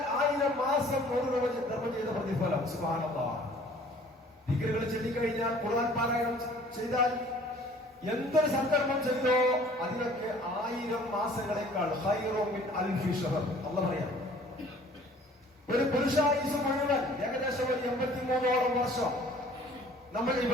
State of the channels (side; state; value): both; normal; correlation 0.52